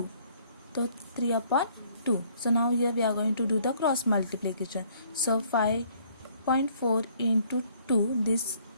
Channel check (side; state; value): both; inverted; correlation -0.62